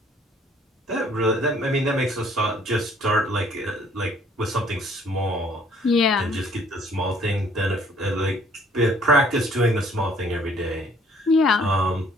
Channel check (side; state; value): both; normal; correlation 0.60